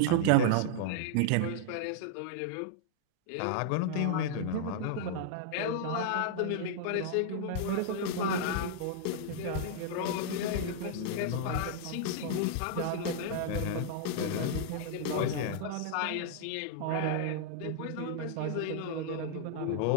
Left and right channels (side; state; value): both; different; correlation -0.01